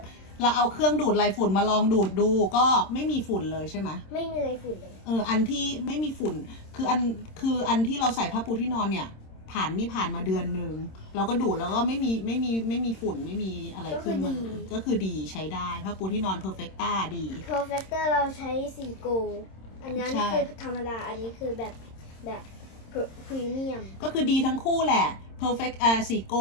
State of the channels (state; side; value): late; right; 26 ms